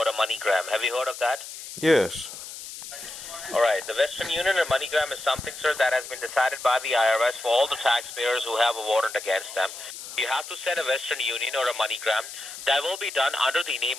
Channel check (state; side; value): noise; left; hiss, 11 dB below the sound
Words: a MoneyGram. Have you heard of that? Yes. All right. The Western Union or MoneyGram is something, sir, that has been decided by the IRS for all the taxpayers who have a warrant against them. You have to send a Western Union or a MoneyGram. That will be done under the name